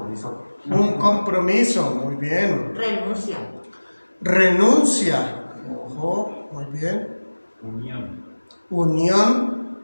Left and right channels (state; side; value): inverted; both; correlation -1.00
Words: Un compromiso. Muy bien. Renuncia. Renuncia. Ojo, muy bien. Unión. Unión.